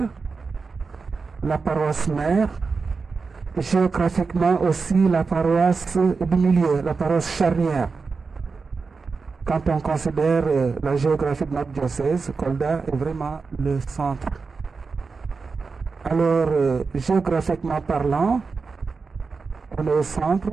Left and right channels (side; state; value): left; quieter; 4.6 dB